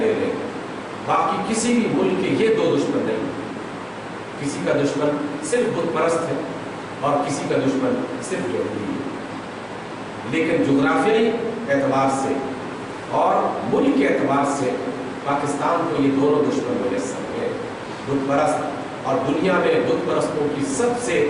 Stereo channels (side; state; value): both; identical; correlation 1.00